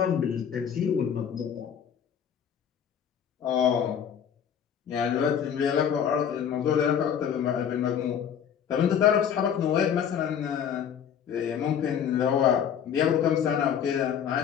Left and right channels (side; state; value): right; quieter; 8.4 dB